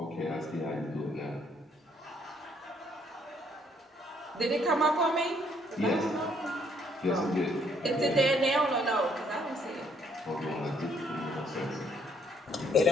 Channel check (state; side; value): normal; both; correlation 0.67